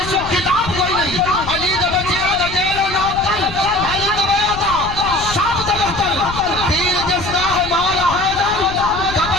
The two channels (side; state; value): left; noise; rumble, 11 dB below the sound